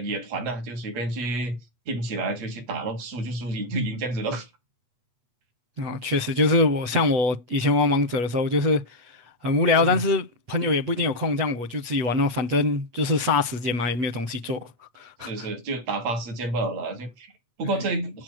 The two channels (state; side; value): late; left; 8.3 ms